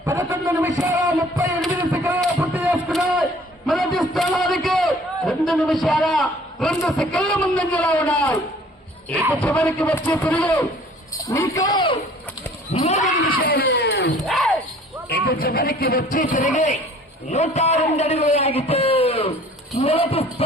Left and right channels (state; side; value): normal; both; correlation 0.52